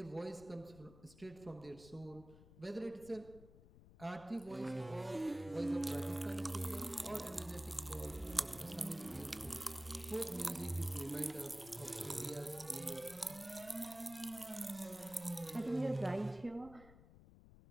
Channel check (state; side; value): noise; left; rumble, 19 dB below the sound